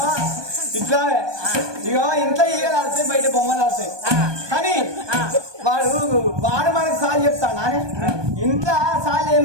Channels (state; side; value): late; left; 1.2 ms